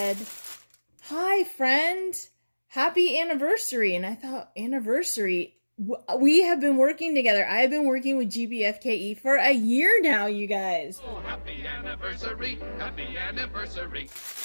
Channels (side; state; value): both; inverted; correlation -1.00